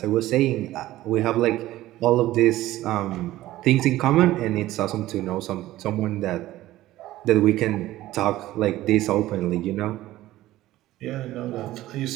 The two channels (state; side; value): quieter; left; 15.7 dB